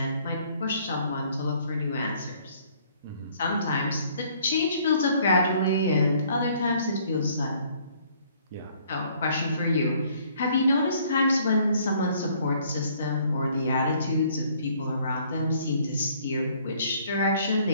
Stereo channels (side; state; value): both; inverted; correlation -0.61